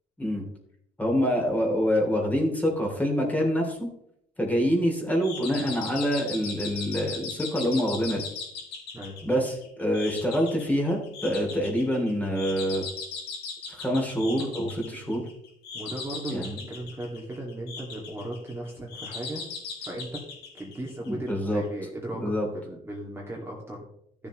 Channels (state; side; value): normal; both; correlation 0.75